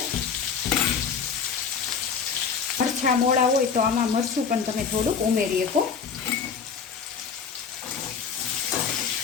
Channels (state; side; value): quieter; right; 6.2 dB